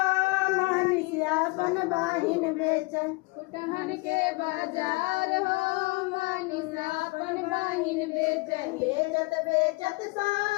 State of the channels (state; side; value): quieter; right; 25.2 dB